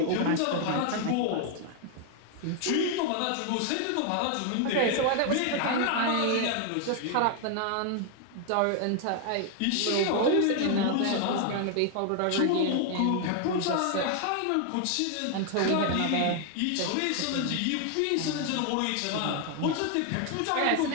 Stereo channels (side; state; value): both; different; correlation 0.01